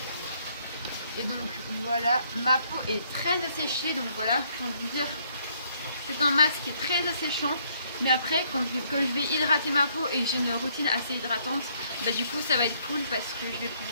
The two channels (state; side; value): inverted; both; correlation -0.67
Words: Et donc voilà, ma peau est très asséchée, donc voilà, je vais vous dire, c'est un masque qui est très asséchant. Mais après, comme je vais hydrater ma peau et que j'ai une routine assez hydratante, du coup ça va être cool parce que je vais